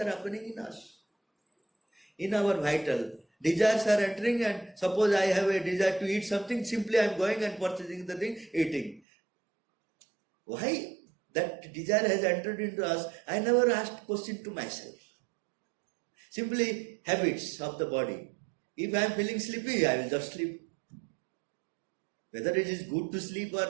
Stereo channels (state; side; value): drops out; left; at 9.0 s